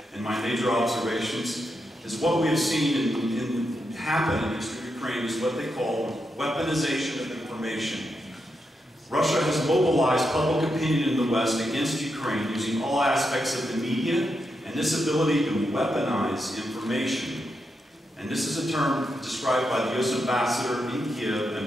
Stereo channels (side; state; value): both; normal; correlation 0.84